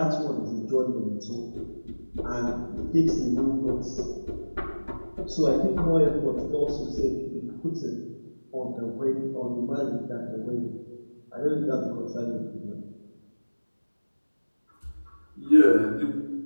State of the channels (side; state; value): both; inverted; correlation -1.00